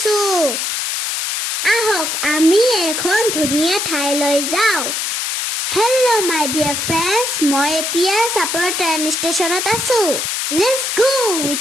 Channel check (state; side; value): noise; left; hiss, 1 dB below the sound